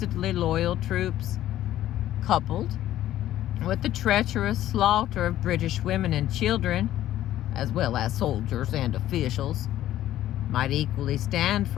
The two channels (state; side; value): quieter; right; 13.1 dB